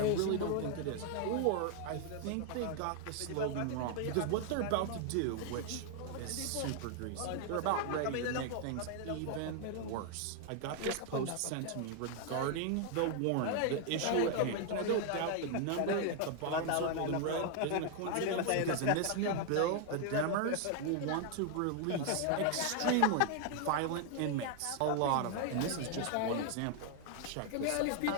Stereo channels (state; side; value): different; both; correlation 0.00